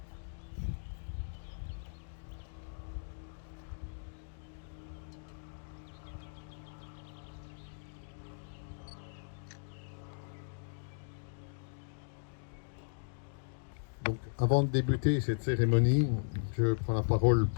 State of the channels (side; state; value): right; silent; digital silence